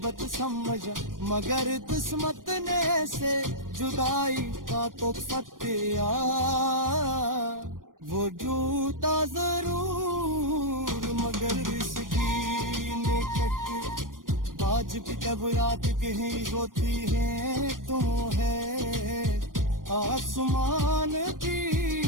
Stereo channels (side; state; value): left; late; 0.90 ms